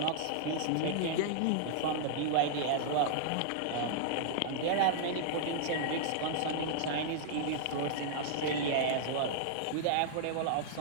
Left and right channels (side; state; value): both; different; correlation -0.01